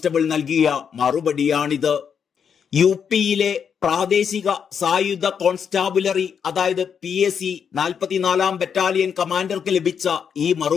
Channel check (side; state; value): right; quieter; 7.2 dB